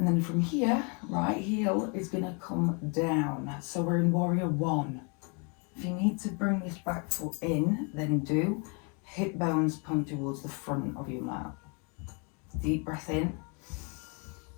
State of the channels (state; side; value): quieter; right; 35.1 dB